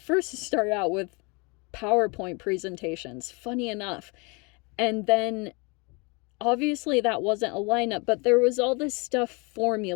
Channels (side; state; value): right; quieter; 30.0 dB